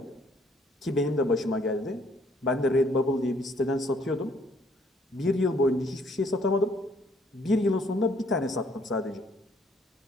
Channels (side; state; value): both; normal; correlation 0.65